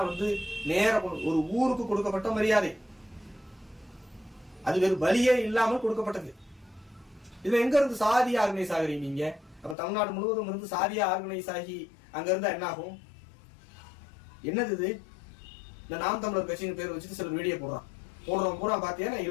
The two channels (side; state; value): right; drops out; at 9.8 s